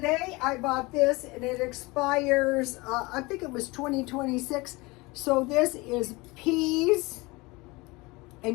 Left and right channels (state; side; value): quieter; right; 23.9 dB